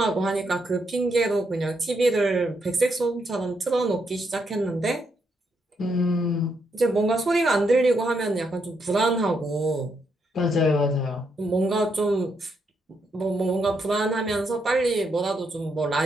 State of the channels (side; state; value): both; normal; correlation 0.78